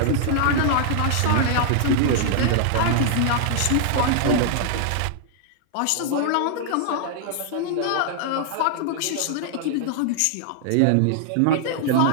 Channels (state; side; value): different; both; correlation -0.01